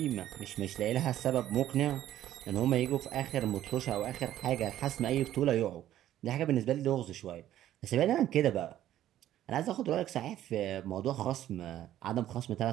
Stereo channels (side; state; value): left; quieter; 12.6 dB